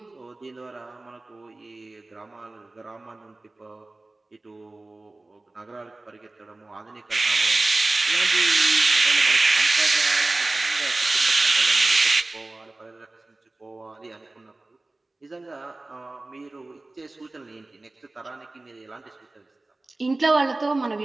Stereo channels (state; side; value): quieter; left; 3.0 dB